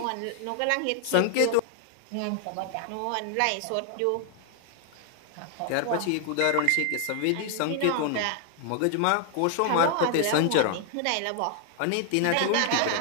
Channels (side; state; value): both; different; correlation 0.00